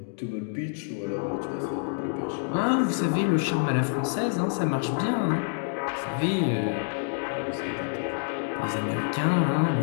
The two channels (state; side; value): silent; right; digital silence